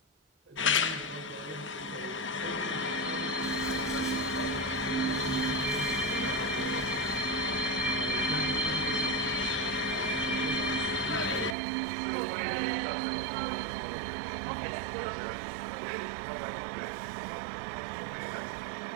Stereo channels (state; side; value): drops out; left; at 11.6 s